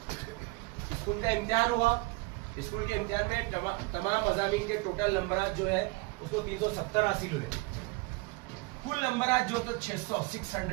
स्कूल का इम्तिहान हुआ, स्कूल के इम्तिहान में तमाम मज़ामीन के टोटल नंबरात जो है उसको 370 हासिल हुए, कुल नंबरात जो तो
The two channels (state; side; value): quieter; left; 24.4 dB